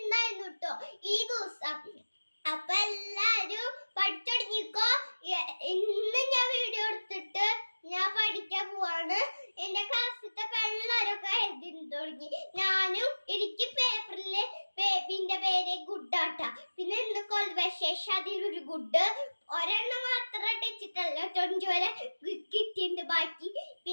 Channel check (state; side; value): inverted; both; correlation -1.00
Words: ഉണ്ടായിരുന്നു കേട്ടോ ഈ ദിവസം. അപ്പൊ എല്ലാരും പഠിച്ചുടങ്ങിക്കോ. ഇന്ന് ഞാൻ വീഡിയോ എടുത്തിട്ട് ഞാൻ പഠിക്കാൻ പോവാണ്. എന്റെ ക്ലാസ്സിലത്തെ എല്ലാവരൊക്കെ എഴുതി തുടങ്ങി. ഞാനും എനിക്ക് പേപ്പറില് ബേബിന്റെ പേര് ഗുഡാട്ടാ. പിന്നെ ഇന്ന് കോൺവെർസേഷൻ അതിലൊരു ഗുഡ് ഒരെണ്ണം മാത്രം ടച്ചിട്ടല്ല, 20 വരെ കിട്ടിയിട്ടുണ്ട് ബാക്കി.